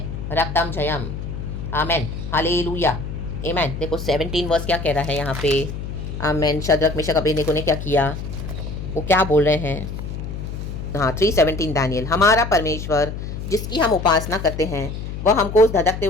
रक्तम जयम। आमेन। हालेलुया। आमेन। देखो 17 वर्स क्या कह रहा है यहाँ पे। आमेन। शद्रक मेशक अबेदnego ने क्या किया, वो क्या बोल रहे हैं। हाँ 3:17 दानियल, हमारा परमेश्वर जिसकी हम उपासना करते हैं वह हमको उस धधकते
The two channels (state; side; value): noise; left; hum, 7 dB below the sound